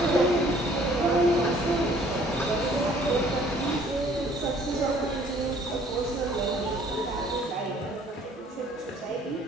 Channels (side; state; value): both; normal; correlation 0.58